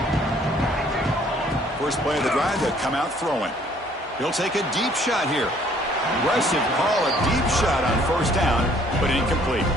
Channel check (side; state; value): both; normal; correlation 0.60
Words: First play of the drive, they come out throwing. He'll take a deep shot here. Aggressive call, a deep shot on 1st down, but incomplete.